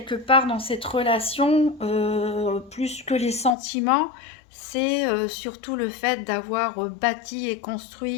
part dans cette relation, plus que les sentiments, c'est surtout le fait d'avoir bâti et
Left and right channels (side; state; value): right; drops out; at 3.6 s